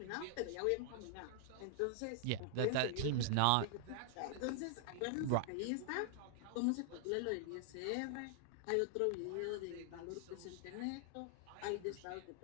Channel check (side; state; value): both; different; correlation 0.00